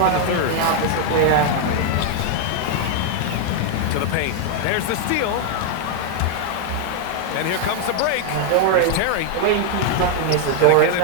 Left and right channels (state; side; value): different; both; correlation 0.00